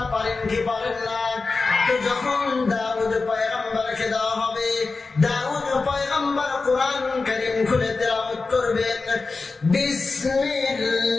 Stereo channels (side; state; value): right; quieter; 4.0 dB